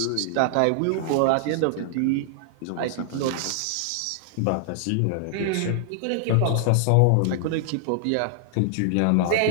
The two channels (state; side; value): different; both; correlation -0.01